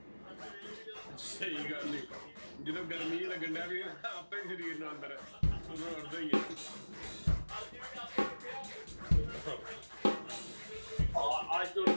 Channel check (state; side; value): inverted; both; correlation -1.00